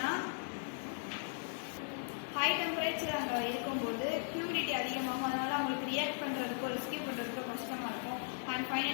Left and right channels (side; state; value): right; silent; 53 dB below the other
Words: ஹை டெம்பரேச்சர் அங்கே இருக்கும்போது ஹியூமிடிட்டி அதிகமாகும். அதனால அவங்களுக்கு ரியாக்ட் பண்ணுறதுக்கோ ரெஸ்கியூ பண்ணுறதுக்கோ கஷ்டமாக இருக்கும். அண்ட்